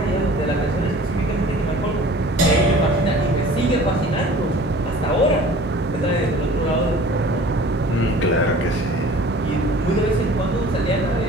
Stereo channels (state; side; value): normal; both; correlation 0.46